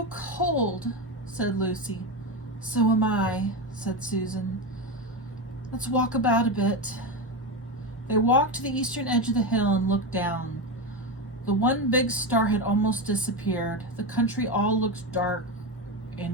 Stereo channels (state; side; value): normal; both; correlation 0.15